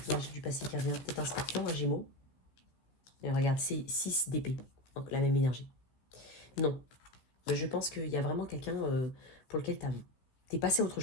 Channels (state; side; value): late; right; 15 ms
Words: énergie du passé qui revient. Peut-être un scorpion, un gémeau. Et regarde, c'est 6 d'épée. Donc, la même énergie. Non. Mais je pense qu'il y a vraiment quelqu'un pour lequel t'es passé à autre